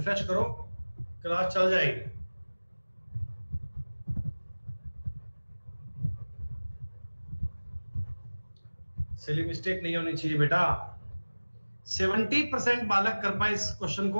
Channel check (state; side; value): inverted; both; correlation -1.00